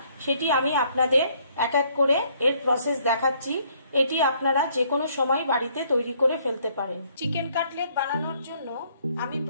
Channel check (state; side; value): inverted; both; correlation -0.65